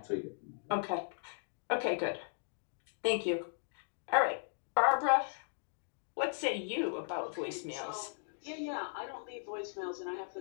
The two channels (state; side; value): silent; right; digital silence